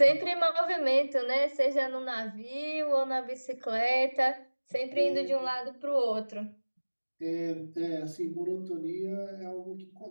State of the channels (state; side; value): inverted; both; correlation -1.00